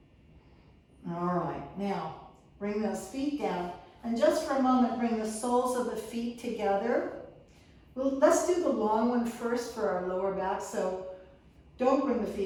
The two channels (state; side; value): identical; both; correlation 1.00